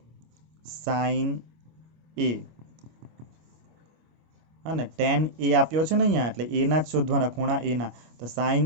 sin A અને tan A આપ્યો છે ને અહીંયા, એટલે A ના જ શોધવાના, ખૂણા A ના. તો sin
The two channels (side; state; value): left; late; 25 ms